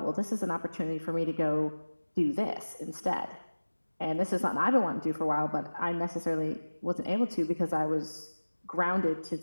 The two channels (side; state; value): both; inverted; correlation -1.00